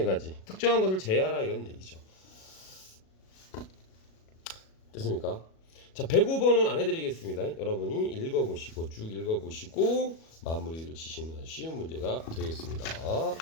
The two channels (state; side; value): late; right; 37 ms